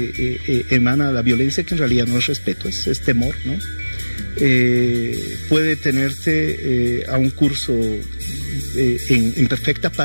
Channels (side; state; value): both; inverted; correlation -1.00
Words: emana la violencia, que en realidad no es respeto, es temor, ¿no? Puede tenerte a un curso en perfecta